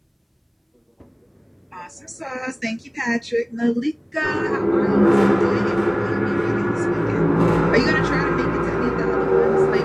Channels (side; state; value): both; identical; correlation 1.00